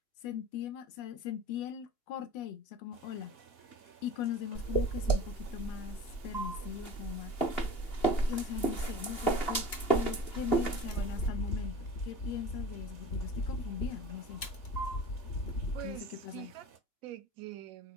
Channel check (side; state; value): right; late; 2.8 ms